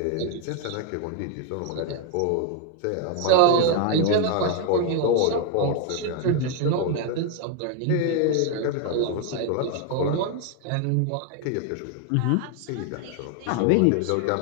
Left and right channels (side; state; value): both; different; correlation 0.01